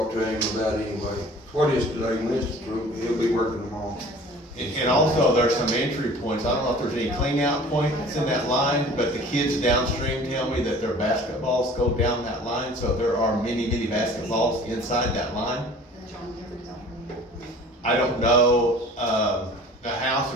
to him about anyway. What is today, Wednesday? He'll be working tomorrow. And also, there's some entry points, I don't know if there's any clean out points in that line, but the kids downstream tell me that their basketballs go down that line, so there are many basketballs inside that line. I don't know, the house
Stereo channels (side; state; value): both; normal; correlation 0.46